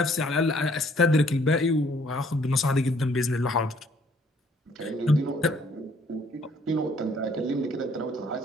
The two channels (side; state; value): both; normal; correlation 0.62